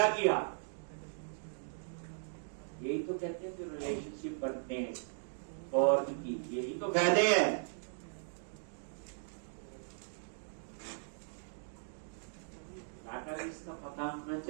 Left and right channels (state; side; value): silent; left; digital silence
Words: किया? यही तो कहते हैं जो रिलेशनशिप बनते हैं और की, यही तो फायदे हैं। डाटाबेस का पता होना